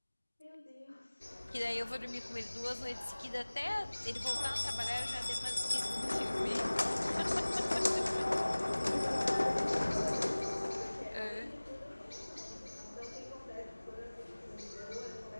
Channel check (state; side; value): inverted; both; correlation -1.00